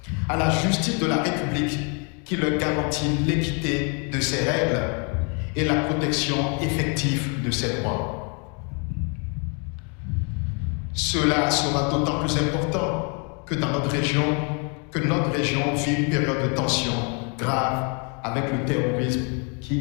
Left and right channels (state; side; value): quieter; right; 36.2 dB